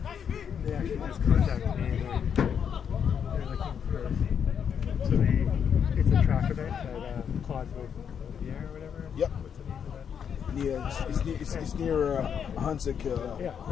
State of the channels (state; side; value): quieter; right; 7.7 dB